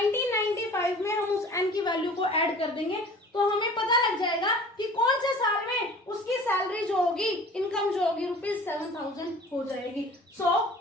में हम उस N की वैल्यू को ऐड कर देंगे तो हमें पता लग जाएगा कि कौन से साल में उसकी सैलरी जो होगी, इनकम जो होगी रुपीज 7,000 हो जाएगी. So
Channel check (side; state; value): both; normal; correlation 0.45